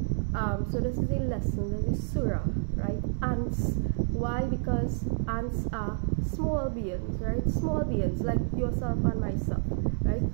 So this is a lesson, this is surah, right? Ants. Why? Because ants are small beings, right? Small beings like yourself and myself, right?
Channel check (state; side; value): silent; left; digital silence